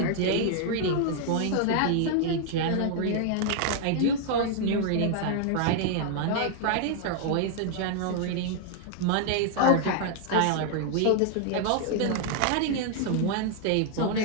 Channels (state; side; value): different; both; correlation 0.00